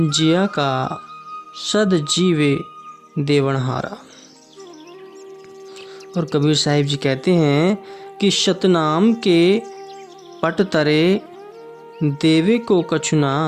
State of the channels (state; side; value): identical; both; correlation 1.00